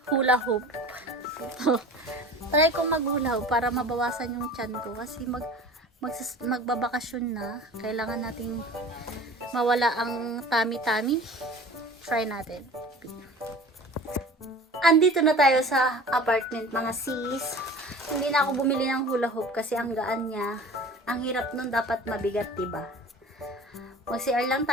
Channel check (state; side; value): normal; both; correlation 0.41